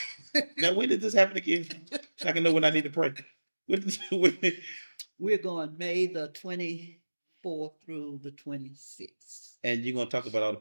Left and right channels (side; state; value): both; inverted; correlation -1.00